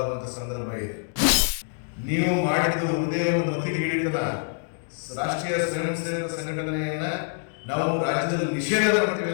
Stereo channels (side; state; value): right; silent; digital silence